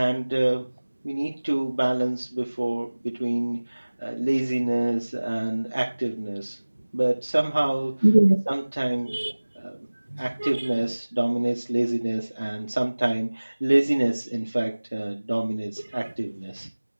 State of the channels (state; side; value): inverted; both; correlation -1.00